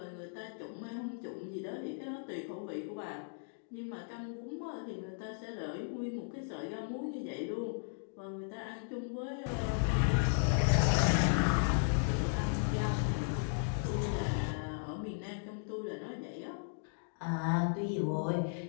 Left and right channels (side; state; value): right; silent; digital silence